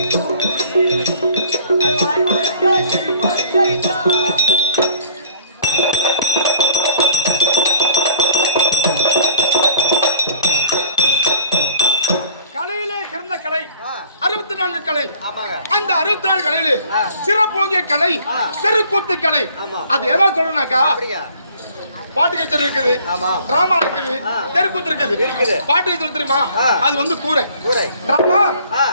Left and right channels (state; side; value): inverted; both; correlation -0.54